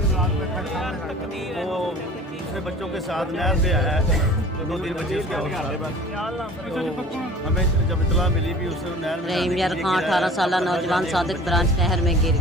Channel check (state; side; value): normal; both; correlation 0.45